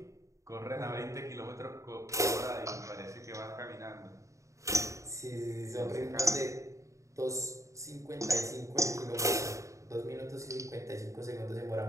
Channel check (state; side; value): late; left; 0.15 ms